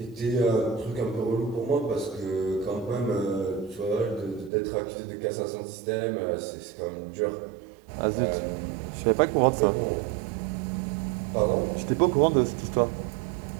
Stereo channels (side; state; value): left; drops out; at 4.5 s